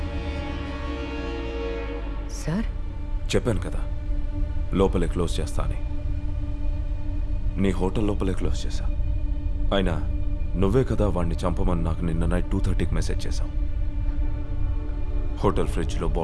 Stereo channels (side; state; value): both; identical; correlation 1.00